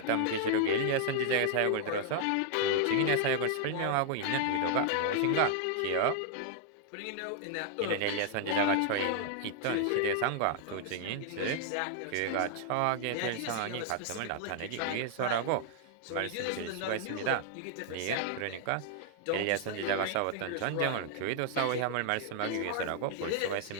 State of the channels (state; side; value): different; both; correlation 0.00